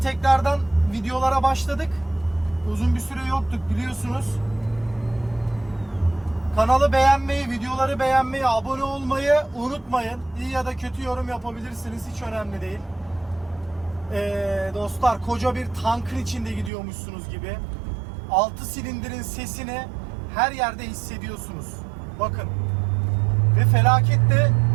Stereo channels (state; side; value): drops out; left; at 16.7 s